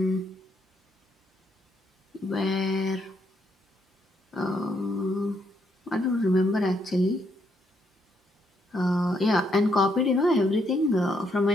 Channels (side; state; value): both; normal; correlation 0.75